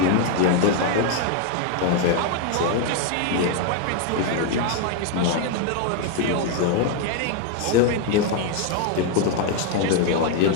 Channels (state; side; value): different; both; correlation 0.01